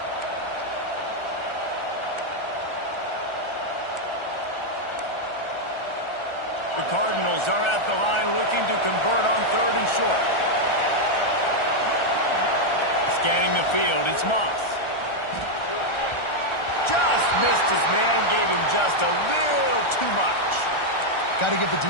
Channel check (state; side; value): late; right; 1.4 ms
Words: The Cardinals are at the line looking to convert on 3rd and short. Scanning the field, it's Moss. Just missed his man, gave him just a little too much. Got to give the